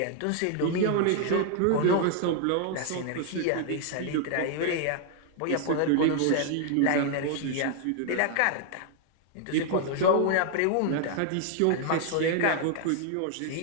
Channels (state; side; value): different; both; correlation 0.00